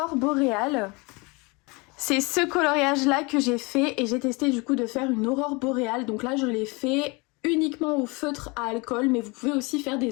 boréales. C'est ce coloriage là que j'ai fait et j'ai testé du coup de faire une aurore boréale. Donc là je l'ai fait uniquement au feutre à alcool, mais vous pouvez aussi faire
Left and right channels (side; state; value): right; quieter; 27.4 dB